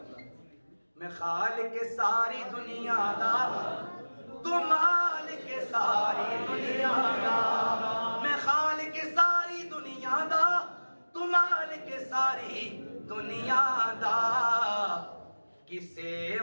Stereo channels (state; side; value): inverted; both; correlation -1.00